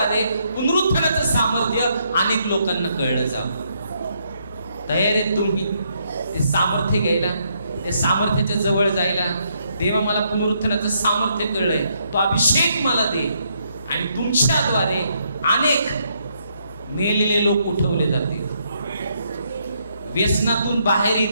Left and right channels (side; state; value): both; inverted; correlation -0.74